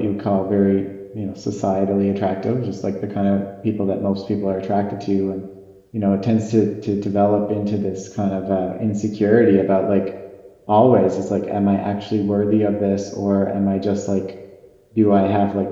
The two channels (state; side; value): identical; both; correlation 1.00